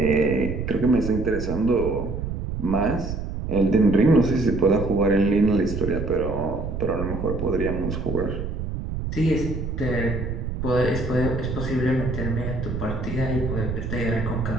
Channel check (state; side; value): noise; right; rumble, 5 dB below the sound